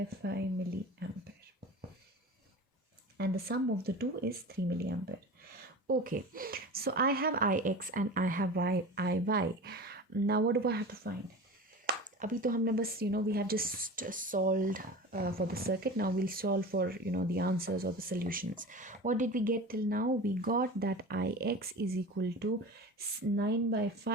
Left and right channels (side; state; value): both; normal; correlation 0.33